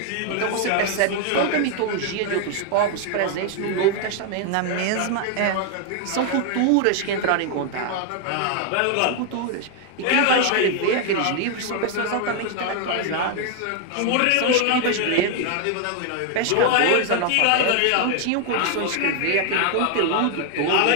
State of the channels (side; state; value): both; different; correlation 0.00